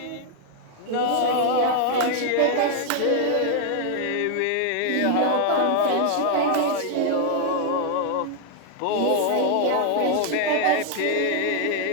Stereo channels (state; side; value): different; both; correlation 0.00